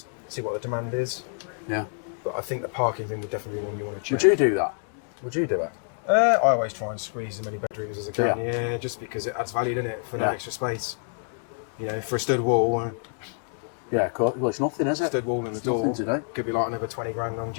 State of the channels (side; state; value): right; silent; 55 dB below the other